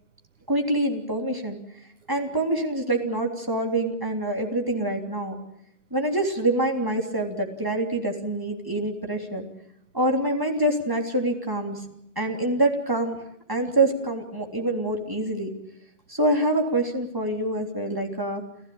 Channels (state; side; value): late; left; 1.0 ms